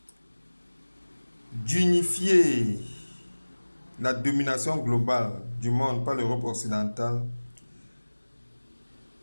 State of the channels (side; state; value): both; inverted; correlation -1.00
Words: d'unifier la domination globale du monde par l'Europe occidentale